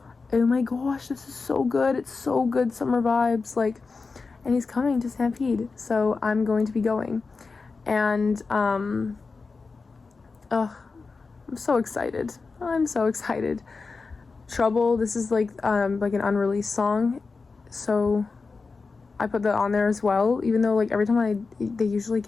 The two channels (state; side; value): quieter; right; 4.3 dB